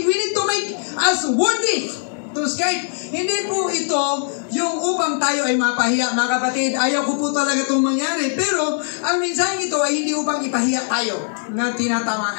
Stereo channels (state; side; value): silent; right; 65 dB below the other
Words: We need to make us worthy to escape. Hindi po ito yung upang tayo ay mapahiya. Mga kapatid, ayaw ko po talaga itong mangyari. Pero ang mensahe ito ay hindi upang ipahiya tayo na